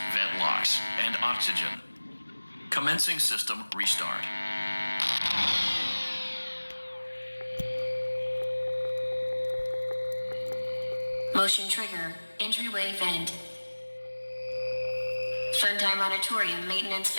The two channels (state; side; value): inverted; both; correlation -1.00